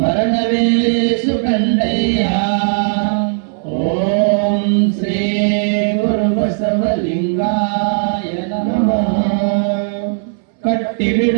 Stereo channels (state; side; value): silent; left; 69 dB below the other